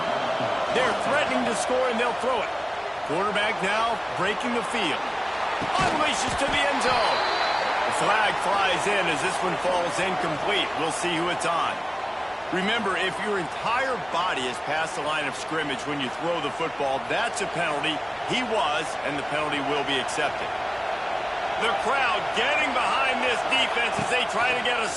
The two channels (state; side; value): identical; both; correlation 1.00